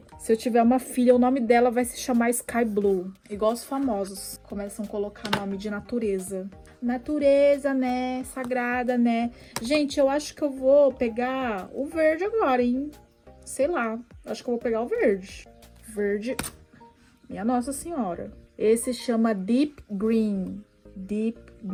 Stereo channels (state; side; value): identical; both; correlation 1.00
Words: Se eu tiver uma filha, o nome dela vai se chamar Sky Blue. Igual os famosos começam a colocar nome de natureza. Natureza, né? Sagrada, né? Gente, eu acho que eu vou pegar o verde agora, hein? Sei lá. Acho que eu vou pegar o verde. Verde. Minha Nossa Senhora. Esse chama Deep Green. Deep